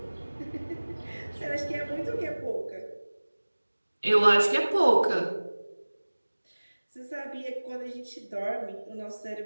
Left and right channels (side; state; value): both; inverted; correlation -1.00